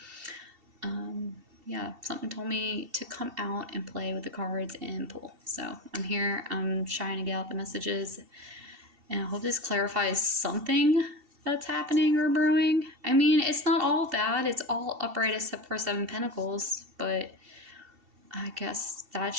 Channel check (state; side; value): late; left; 2.7 ms